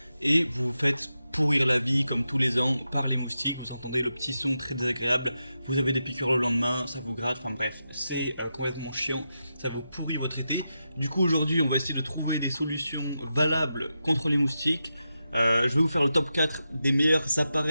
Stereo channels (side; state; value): both; inverted; correlation -0.88